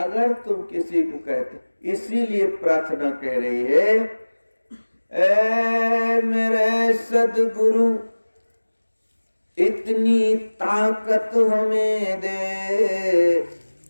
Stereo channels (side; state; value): both; inverted; correlation -1.00